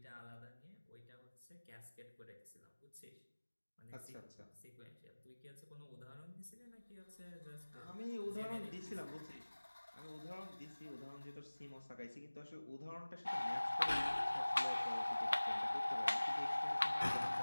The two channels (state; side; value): inverted; both; correlation -1.00